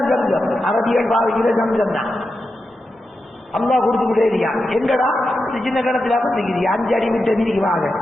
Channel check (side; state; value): both; normal; correlation 0.89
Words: சம்சம். அரபியல் பாவிக்கிற சம்சம் தான். அல்லா கொடுத்துக்கிட்டே இருக்கான். எங்கடா சின்ன கணத்துல பண்ணிக்கிறீங்க 5 அடி விட்ட நீதிக்கு வாங்க.